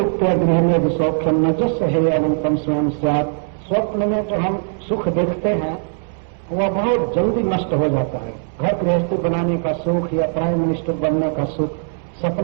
गृह में सौख्यम न जस है अनंतम स्वयं साथ। स्वप्न में जो हम सुख देखते हैं वह बहुत जल्दी नष्ट हो जाता है। घर गृहस्थी बनाने का सुख या प्राइम मिनिस्टर बनने का सुख,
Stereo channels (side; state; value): left; silent; 66 dB below the other